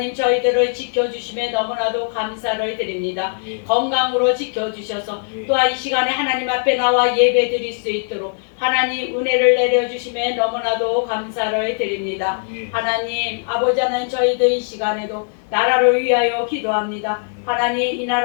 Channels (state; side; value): silent; right; 66 dB below the other